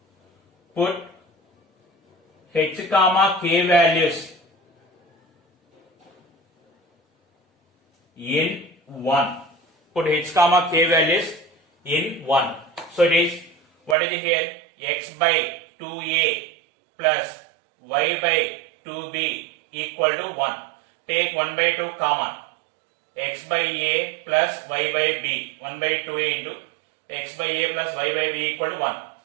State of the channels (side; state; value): left; drops out; at 14.0 s